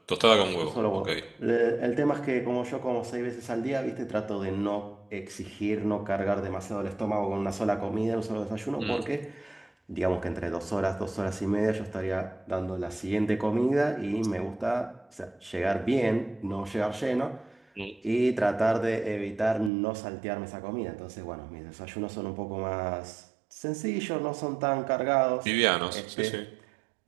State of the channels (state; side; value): drops out; left; at 19.7 s